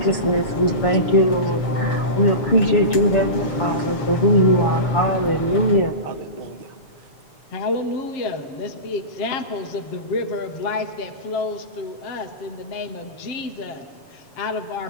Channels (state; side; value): late; right; 7.3 ms